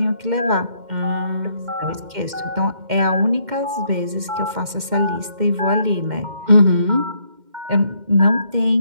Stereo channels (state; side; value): late; left; 2.1 ms